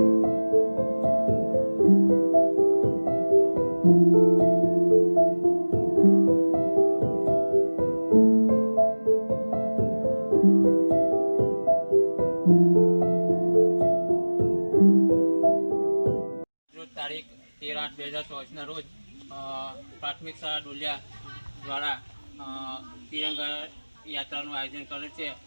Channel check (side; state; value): both; inverted; correlation -1.00